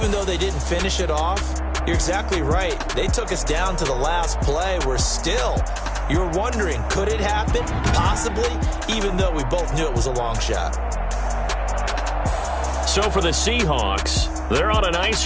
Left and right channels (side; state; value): both; identical; correlation 1.00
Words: though they didn't finish it off, you're exactly right. They took us down to the last play. You're wondering, could it happen? Possibly, even though we both knew it was a long shot. So for the Seahawks, they're on a nice